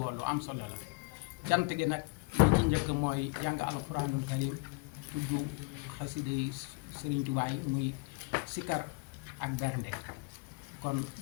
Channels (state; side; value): quieter; right; 28.9 dB